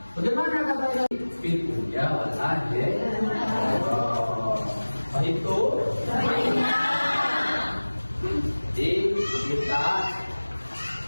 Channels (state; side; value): inverted; both; correlation -1.00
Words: Bagaimana katanya? Fitnya walaje. Itu jadi kita